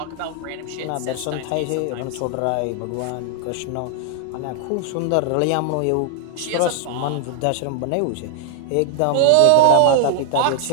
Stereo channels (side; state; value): both; different; correlation 0.00